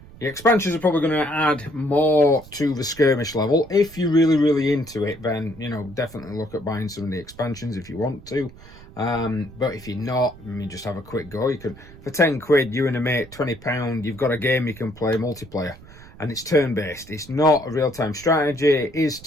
The expansions are probably going to add more to the Skirmish level. If you're really into it, then, definitely look at buying some of the expansions if you want to. But if you're not, just have a quick go. You can, for 10 quid, you and a mate, £20, you've got a game you can play multiplayer. And it's turn-based. It's not a real-time strategy. It is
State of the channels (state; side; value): noise; right; rumble, 20 dB below the sound